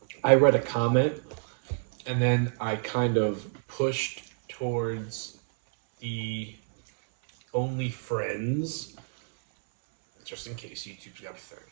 I read a comment, and then I kind of pushed towards the Only Friends, just in case YouTube's got a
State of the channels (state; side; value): silent; left; 59 dB below the other